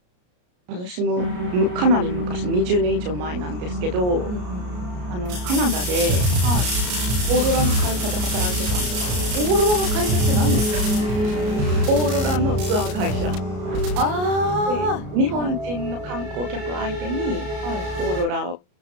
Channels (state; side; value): late; left; 33 ms